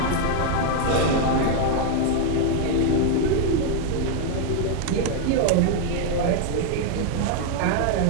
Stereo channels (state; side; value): different; both; correlation 0.00